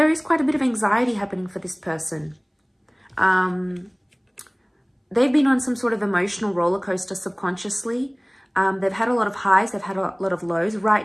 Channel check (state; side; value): identical; both; correlation 1.00